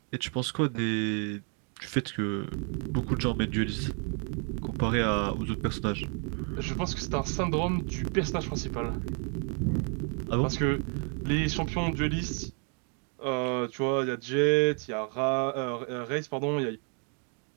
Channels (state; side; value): quieter; left; 39.3 dB